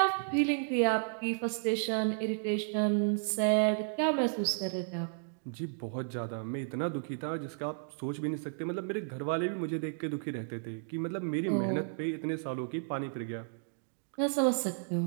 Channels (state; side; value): silent; left; digital silence